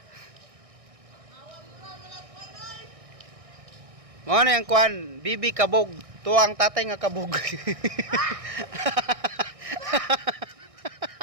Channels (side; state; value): left; late; 1.6 ms